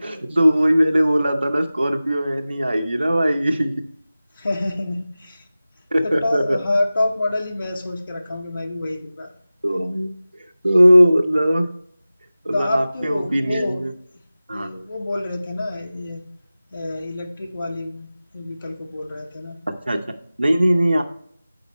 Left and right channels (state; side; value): inverted; both; correlation -0.97